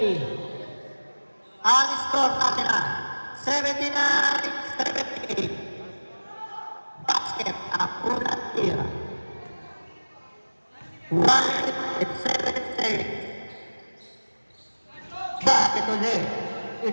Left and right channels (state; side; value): inverted; both; correlation -1.00